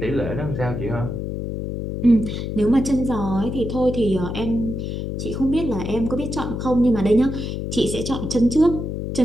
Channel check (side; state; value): left; noise; hum, 4 dB below the sound